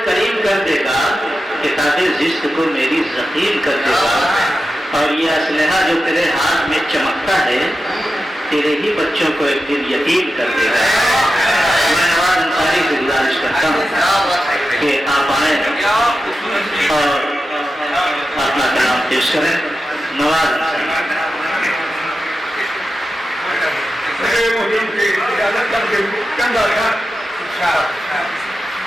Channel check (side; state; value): both; normal; correlation 0.91